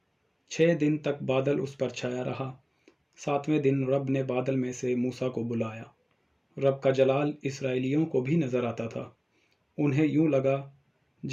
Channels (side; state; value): both; identical; correlation 1.00